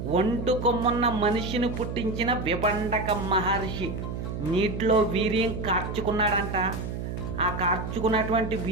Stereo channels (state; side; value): noise; right; hum, 5 dB below the sound